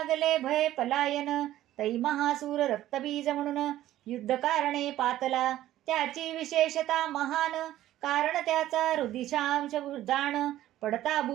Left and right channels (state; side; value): quieter; left; 13.8 dB